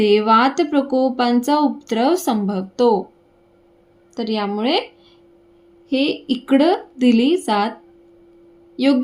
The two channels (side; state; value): both; identical; correlation 1.00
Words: वात प्रकोपांचा उपद्रव संभवतो. तर यामुळे हे इकडं दिली जात,